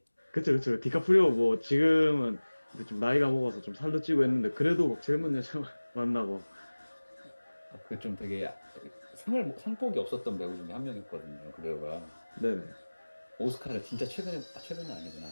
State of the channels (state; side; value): inverted; both; correlation -1.00